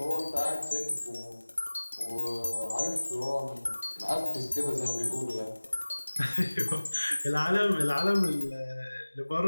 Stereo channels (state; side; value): inverted; both; correlation -1.00